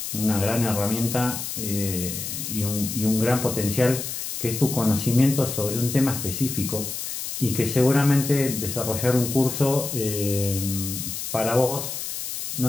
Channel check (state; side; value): noise; left; hiss, 6 dB below the sound